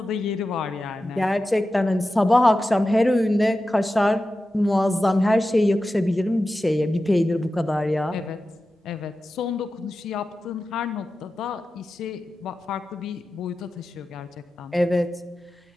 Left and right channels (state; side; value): normal; both; correlation 0.93